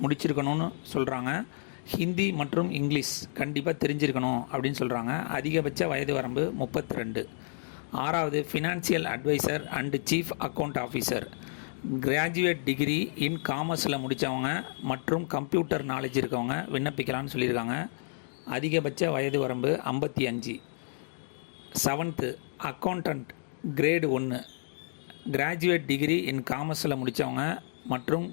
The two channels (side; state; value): right; silent; digital silence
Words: முடிச்சிருக்கணும்னு சொல்கிறாங்க. ஹிந்தி மற்றும் இங்கிலீஷ் கண்டிப்பாக தெரிஞ்சிருக்கணும் அப்படின்னு சொல்கிறாங்க. அதிகபட்ச வயது வரம்பு 32. ஆறாவது financial advisor and chief account officer. Graduate degree in காமர்ஸில் முடித்தவங்க மற்றும் கம்ப்யூட்டர் நாலேஜ் இருக்கவங்க விண்ணப்பிக்கலாம்னு சொல்லியிருக்காங்க. அதிகபட்ச வயது வரம்பு 55. Seventh accountant grade 1. Graduate degree in காமர்ஸில் முடித்தவங்க மற்றும்